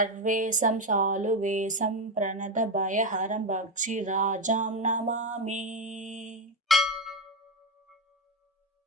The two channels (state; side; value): normal; both; correlation 0.11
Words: शालुवेशं प्रणतभयहरं भक्षिराजां नमामि।